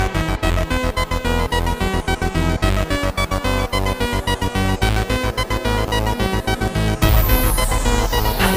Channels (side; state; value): both; identical; correlation 1.00